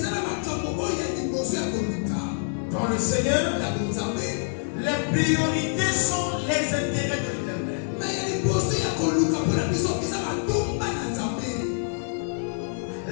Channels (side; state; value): right; silent; 61 dB below the other